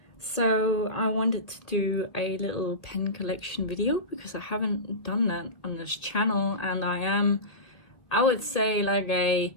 so I wanted to do a little pen collection video because I haven't done that on this channel, and I would say like a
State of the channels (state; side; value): late; right; 1.8 ms